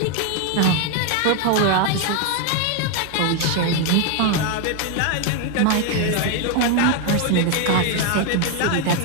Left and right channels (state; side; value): different; both; correlation 0.01